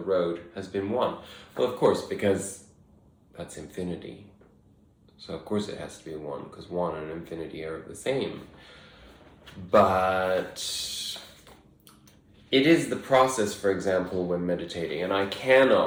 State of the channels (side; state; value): both; identical; correlation 1.00